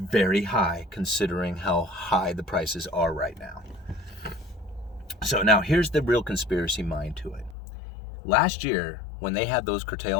very high considering how high the prices are right now. So now here's the real conspiracy mind to it. Last year, when they had those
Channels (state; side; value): drops out; right; at 7.6 s